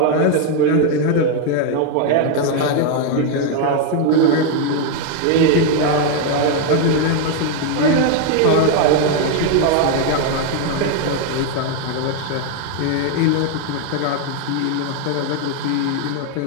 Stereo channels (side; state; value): both; different; correlation 0.01